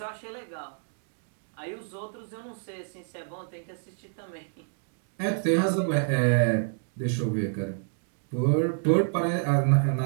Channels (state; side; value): silent; left; 59 dB below the other